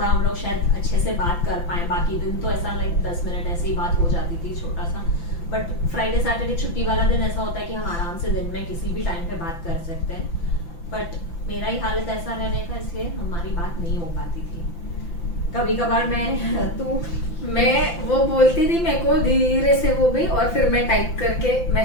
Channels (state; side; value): late; right; 5.9 ms